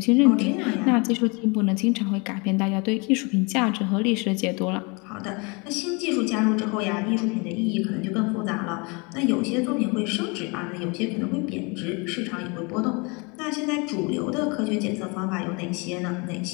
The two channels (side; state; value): right; quieter; 29.8 dB